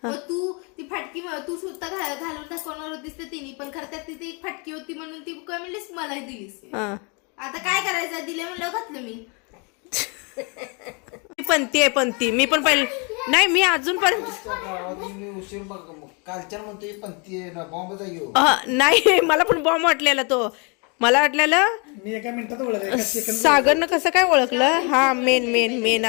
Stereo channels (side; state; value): right; quieter; 33.1 dB